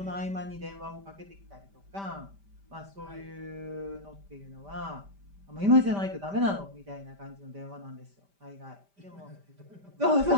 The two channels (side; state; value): left; late; 5.1 ms